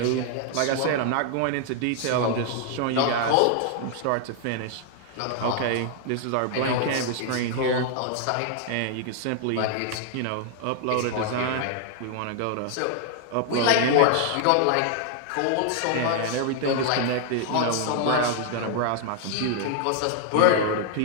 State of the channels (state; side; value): different; both; correlation 0.00